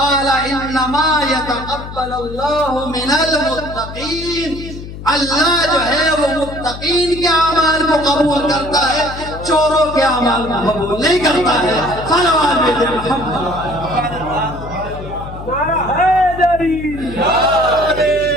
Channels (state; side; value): noise; left; hum, 11 dB below the sound